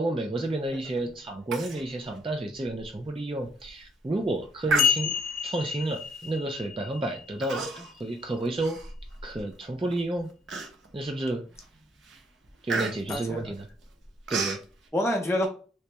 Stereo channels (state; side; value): normal; both; correlation 0.69